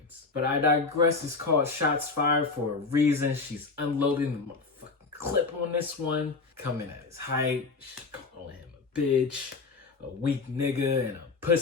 But I digress, it's called Shots Fired for a reason. She's unloading the motherfucking clip on this one, coming at his height, calling him a bitch, a weak nigga, and a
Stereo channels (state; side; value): quieter; right; 4.2 dB